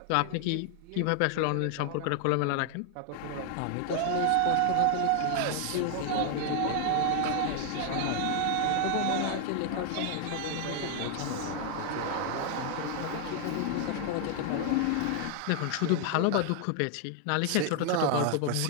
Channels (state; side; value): different; both; correlation 0.00